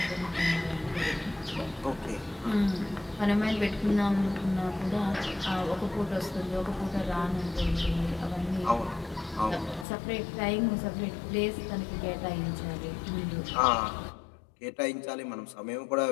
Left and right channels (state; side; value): drops out; right; at 9.9 s